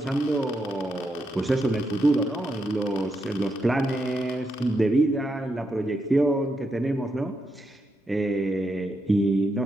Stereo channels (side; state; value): both; normal; correlation 0.83